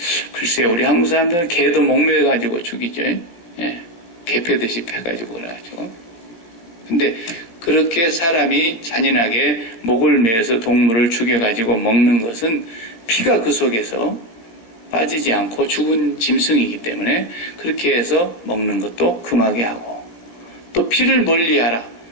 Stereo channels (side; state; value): right; late; 17 ms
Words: 글쎄요, 우리 한국 사람들은 개도 목매가지고 죽이죠. 개 패듯이 패가지고 그래가지고. 근데 그렇게 사람이 잔인하게 목을 매어서 동물을 죽여가지고 먹는 것은 피가 그 속에서 빠지지 않고 죽은 짐승이기 때문에 그렇게 해서 먹는 것도 금하게 하고 또 피를 멀리하라.